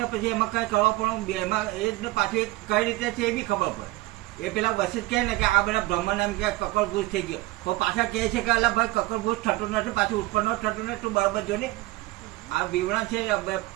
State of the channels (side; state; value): left; quieter; 19.8 dB